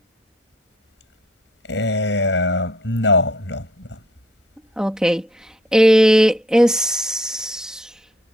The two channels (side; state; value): both; normal; correlation 0.63